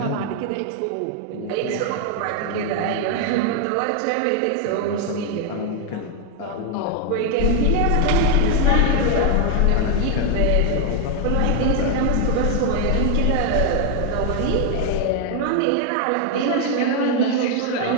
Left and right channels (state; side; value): different; both; correlation 0.00